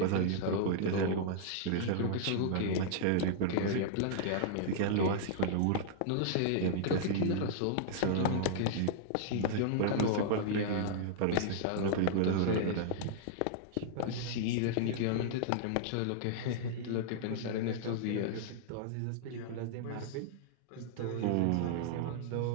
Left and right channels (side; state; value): both; different; correlation -0.01